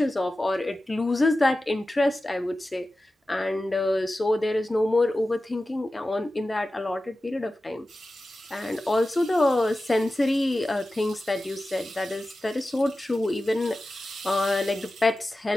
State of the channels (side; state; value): both; normal; correlation 0.94